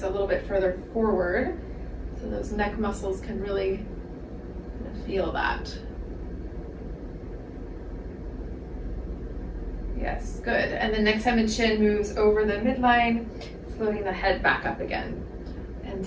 a little bit further forward. So those neck muscles can really kind of feel that. Yes, good. And then next time the chin moves over the midline, floating the head back up again and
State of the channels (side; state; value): both; identical; correlation 1.00